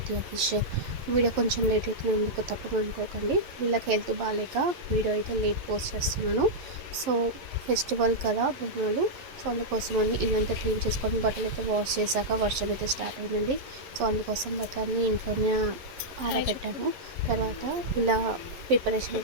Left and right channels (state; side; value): late; left; 11 ms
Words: official. Video కొంచెం లేట్ అవుతున్నందుకు తప్పకుండా అనుకోకండి. వీళ్ళకి హెల్త్ బాగాలేక వీడియో అయితే లేట్ పోస్ట్ చేస్తున్నాను. సో ఫెస్టివల్ కదా బొమ్మలు, సో అందుకోసమని ఇల్లంతా క్లీన్ చేసుకొని బట్టలు అయితే వాష్ చేశాక వర్షం అయితే స్టార్ట్ అయిందండి. సో అందుకోసం బట్టలన్నీ ఇంట్లోనే ఆరబెట్టాను. తర్వాత ఇలా ప్రిపరేషన్